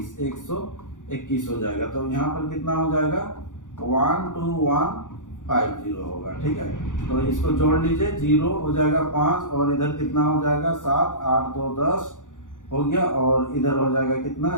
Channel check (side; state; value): right; late; 0.87 ms